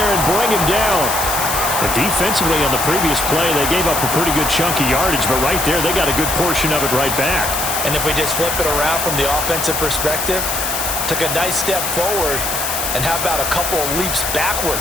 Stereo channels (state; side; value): noise; left; hiss, 2 dB below the sound